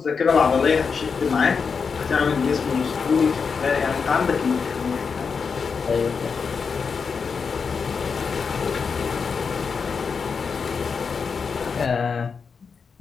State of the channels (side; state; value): right; quieter; 5.6 dB